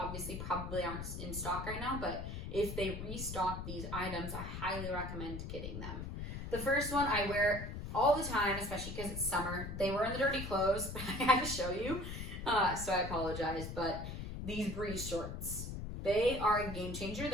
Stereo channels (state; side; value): noise; left; rumble, 6 dB below the sound